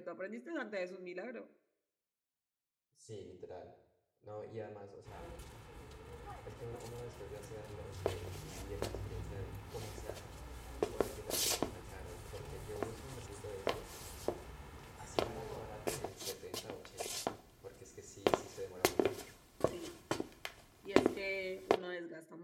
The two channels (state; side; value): identical; both; correlation 1.00